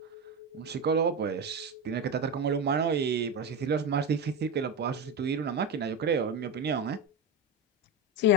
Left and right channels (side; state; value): both; normal; correlation 0.16